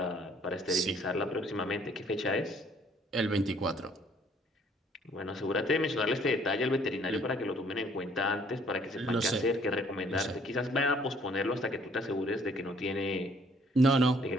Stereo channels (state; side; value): normal; both; correlation 0.61